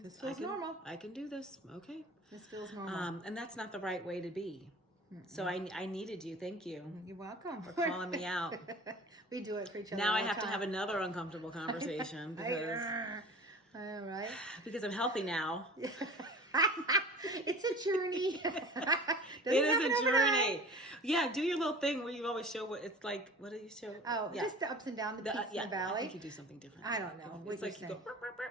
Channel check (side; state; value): both; normal; correlation 0.40